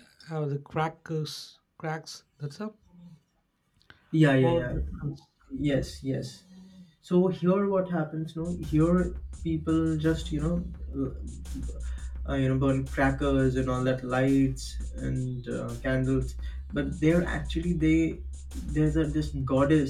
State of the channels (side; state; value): both; identical; correlation 1.00